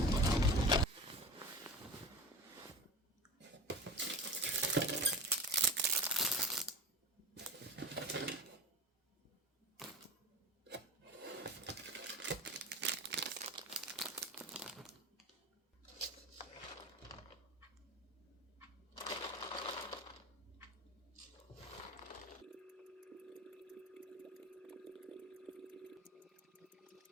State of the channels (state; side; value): normal; both; correlation 0.30